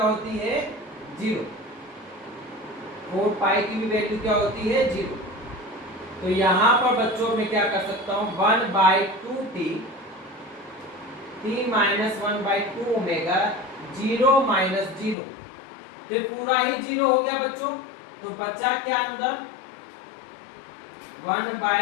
होती है, 0। 4 पाई की भी वैल्यू क्या होती है, 0। तो यहां पर बच्चों मैं क्या कर सकता हूं, 1/2 t माइनस 1/2 ओमेगा 0 माइनस 0, तो ये पूरा ही 0 हो गया बच्चों। तो बचा क्या अंदर,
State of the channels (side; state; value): right; drops out; at 15.2 s